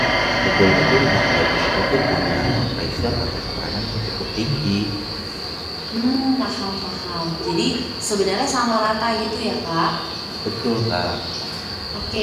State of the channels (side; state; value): both; identical; correlation 1.00